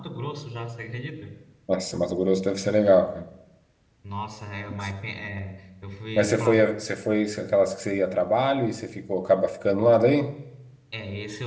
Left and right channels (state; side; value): identical; both; correlation 1.00